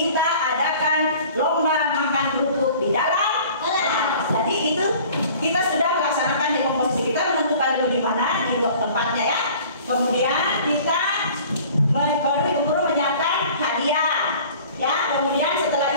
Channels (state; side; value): inverted; both; correlation -0.48